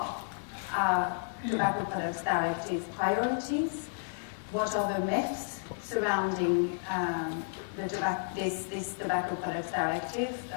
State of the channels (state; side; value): silent; right; digital silence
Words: our Tobacco Products Directive priorities, what are the myths surrounding this Tobacco Products Directive